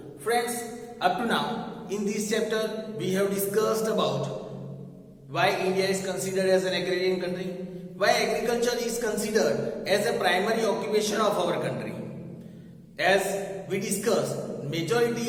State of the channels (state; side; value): identical; both; correlation 1.00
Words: Friends, up to now, in this chapter, we have discussed about why India is considered as an agrarian country, why agriculture is considered as a primary occupation of our country. As we discussed,